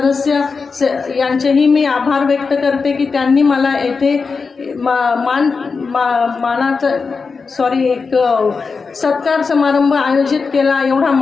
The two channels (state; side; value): quieter; right; 4.8 dB